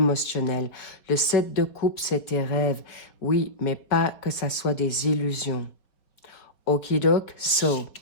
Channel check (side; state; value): right; late; 4.7 ms